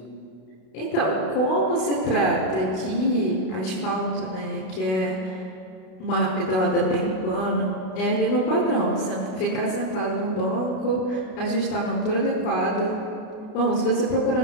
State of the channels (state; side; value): late; right; 32 ms